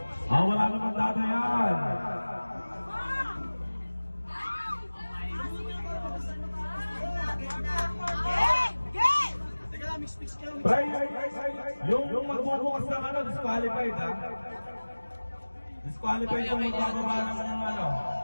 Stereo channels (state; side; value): inverted; both; correlation -1.00